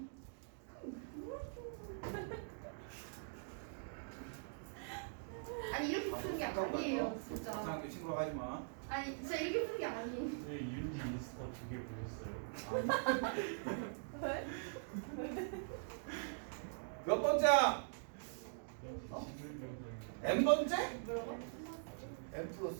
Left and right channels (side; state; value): left; silent; digital silence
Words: 아니 이렇게 푸는 게 아니에요 진짜. 이상하게 친구라고 하지 마. 아니 진짜 이렇게 푸는 게 아니에요. 네, 윤지 인스타 2개 보냈어요. 왜? 몇 번째야? 어? n 번째? 뭐라고? n